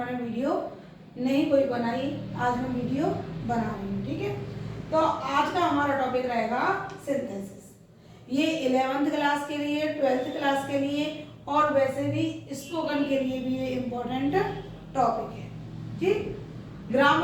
वीडियो नहीं कोई बनाई। आज मैं वीडियो बना रही हूँ, ठीक है। तो आज का हमारा टॉपिक रहेगा सिंथेसिस। ये 11th क्लास के लिए, 12th क्लास के लिए और वैसे भी स्पोकन के लिए भी ये इम्पोर्टेंट टॉपिक है, ठीक।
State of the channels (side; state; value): both; identical; correlation 1.00